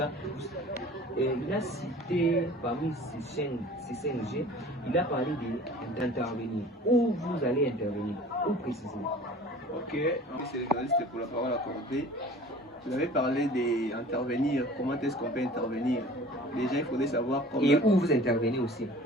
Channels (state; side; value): normal; both; correlation 0.44